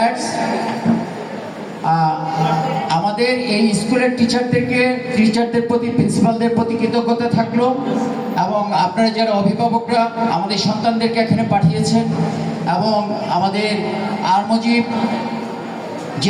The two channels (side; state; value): both; identical; correlation 1.00